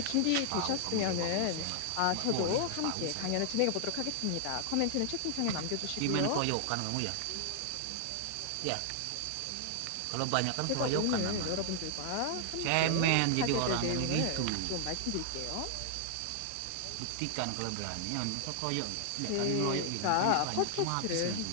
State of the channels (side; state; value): both; different; correlation 0.00